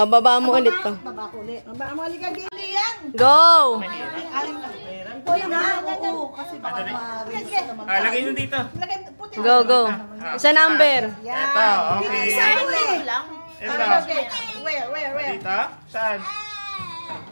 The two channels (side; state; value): both; inverted; correlation -1.00